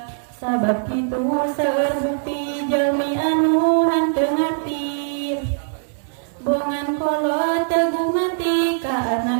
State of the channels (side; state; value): left; silent; 61 dB below the other